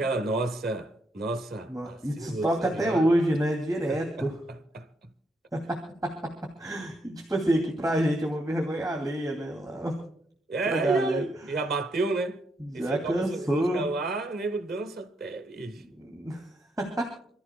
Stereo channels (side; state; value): both; normal; correlation 0.78